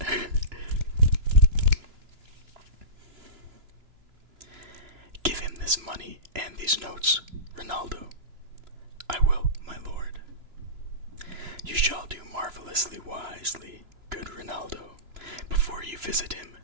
Give him this money and these notes, Ronaldo. I will, my lord. You shall do marvelously wisely, good Ronaldo, before you visit him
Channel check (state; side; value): late; left; 3.0 ms